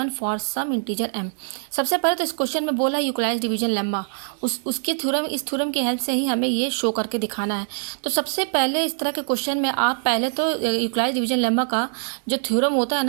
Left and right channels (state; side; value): silent; left; digital silence